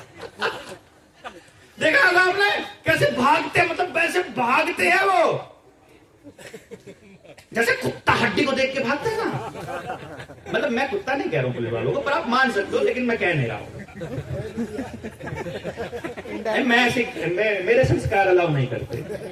देखा होगा आपने कैसे भागते, मतलब वैसे भागते हैं वो, जैसे कुत्ता हड्डी को देख के भागता है ना। मतलब मैं कुत्ता नहीं कह रहा हूं पुलिस वालों को, पर आप मान सकते हो, लेकिन मैं कह नहीं रहा हूं। मैं ऐसे मेरे संस्कार अलाउ नहीं करते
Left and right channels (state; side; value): identical; both; correlation 1.00